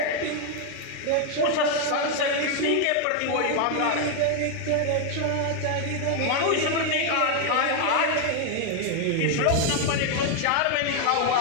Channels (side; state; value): both; different; correlation 0.00